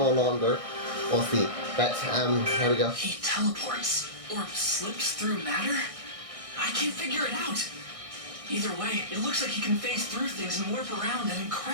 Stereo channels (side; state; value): left; late; 1.6 ms